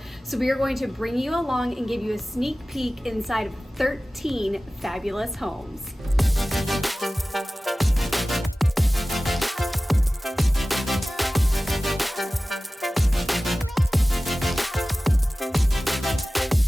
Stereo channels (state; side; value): normal; both; correlation 0.97